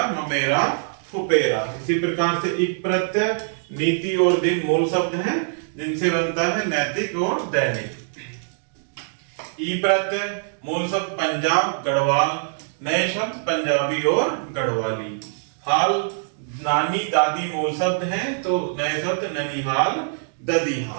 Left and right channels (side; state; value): left; silent; digital silence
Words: ममेरा फुपेरा। इसी प्रकार से इक प्रत्यय, नीति और दिन मूल शब्द हैं जिनसे बनता है नैतिक और दैनिक। ई प्रत्यय मूल शब्द पंजाब गढ़वाल, नए शब्द पंजाबी और गढ़वाली। हाल नानी दादी मूल शब्द हैं, तो नए शब्द ननिहाल